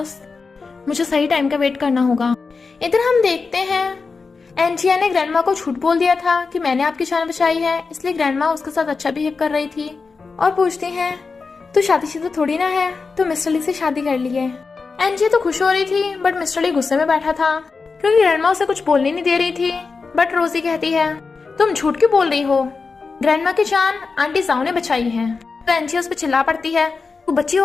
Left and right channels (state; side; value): quieter; right; 4.6 dB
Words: मुझे सही टाइम का वेट करना होगा। इधर हम देखते हैं एंजिया ने ग्रैंडमा को झूठ बोल दिया था कि मैंने आपकी जान बचाई है, इसलिए ग्रैंडमा उसके साथ अच्छा बिहेव कर रही थी और पूछती है, तो शादीशुदा थोड़ी ना है, तो मिस्टर ली से शादी कर ली है। एंजिया तो खुश हो रही थी बट मिस्टर ली गुस्से में बैठा था क्योंकि ग्रैंडमा उसे कुछ बोलने नहीं दे रही थी। बट रोजी कहती है, तुम झूठ क्यों बोल रही हो? ग्रैंडमा की जान आंटी जाओ ने बचाई है। तो एंजिया उस पर चिल्ला पड़ती है, तू बच्ची